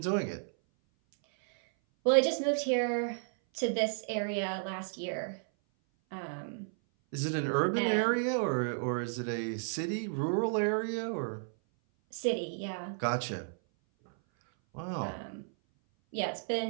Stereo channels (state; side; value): silent; left; 56 dB below the other